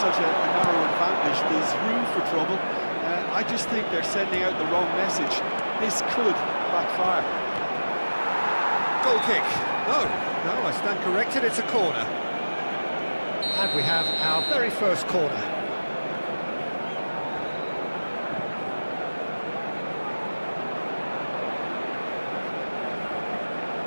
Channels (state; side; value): inverted; both; correlation -1.00